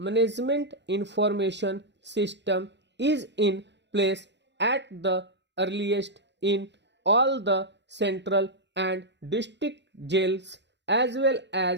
information system is in place at the earliest in all the central and district jails as well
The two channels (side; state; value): left; late; 0.51 ms